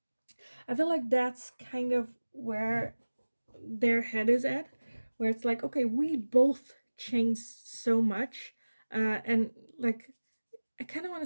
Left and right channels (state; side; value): inverted; both; correlation -1.00